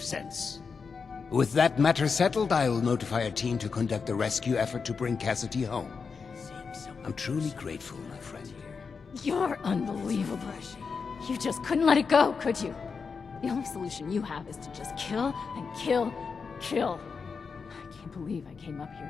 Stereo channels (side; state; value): right; quieter; 5.4 dB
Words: sense. With that matter settled, I'll notify a team to conduct a rescue effort to bring Cassidy home. I'm truly grateful, my friend. You're unbelievable. You just couldn't let it go, could you? The only solution you have is to just kill and kill and kill. I can't believe I came up